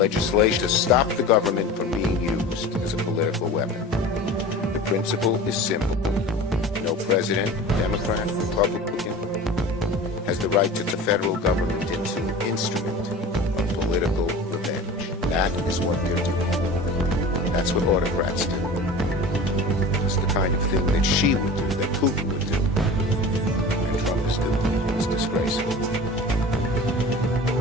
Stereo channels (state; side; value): normal; both; correlation 0.37